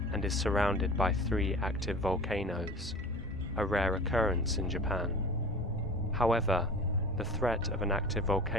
and is surrounded by 3 active volcanoes, a rare occurrence in Japan. However, the threat of an active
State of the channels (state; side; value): normal; both; correlation 0.37